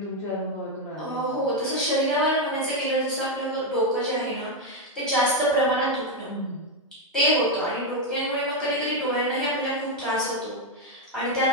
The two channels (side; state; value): both; normal; correlation 0.04